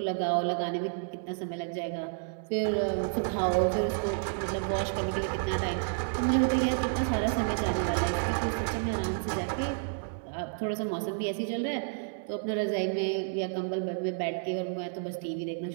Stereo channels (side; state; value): left; silent; 57 dB below the other